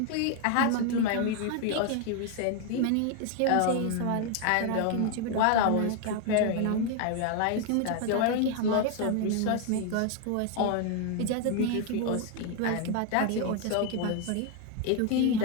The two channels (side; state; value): both; different; correlation 0.01